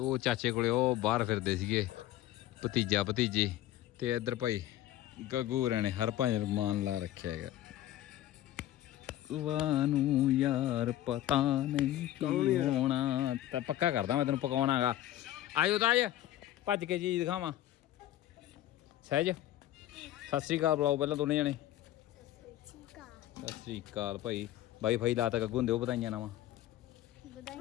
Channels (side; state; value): right; quieter; 13.8 dB